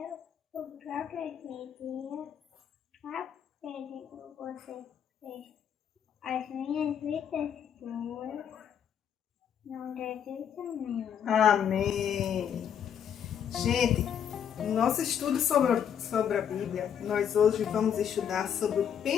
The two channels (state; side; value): quieter; right; 8.6 dB